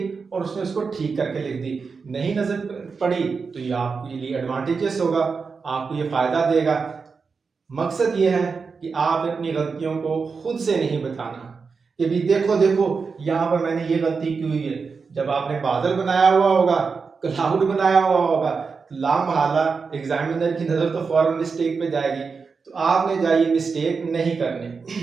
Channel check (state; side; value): quieter; left; 5.0 dB